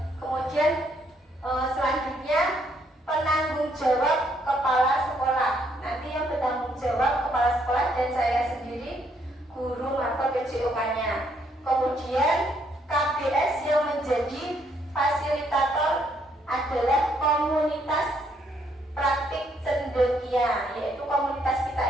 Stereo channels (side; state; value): both; normal; correlation 0.71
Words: Kemudian selanjutnya penanggung jawab kepala sekolah. Nanti yang bertanggung jawab kepala sekolah dan saya sendiri guru atau PJOK-nya. Kemudian KBS yang menjadi fasilitator adalah komunitas praktik cendekia, yaitu komunitas kita